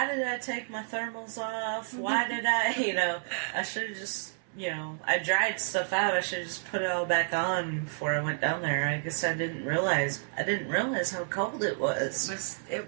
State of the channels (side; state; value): left; silent; 58 dB below the other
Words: did I take my thermals off? Why did I, you know, I should have just, you know, I dried stuff out. I should have just put it all back on before I went down there. I guess I didn't realize how cold it was.